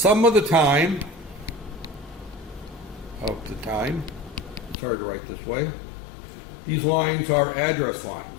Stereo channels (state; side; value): drops out; right; at 4.8 s